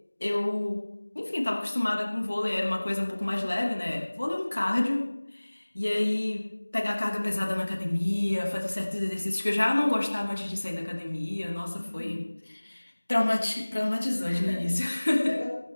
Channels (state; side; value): inverted; both; correlation -1.00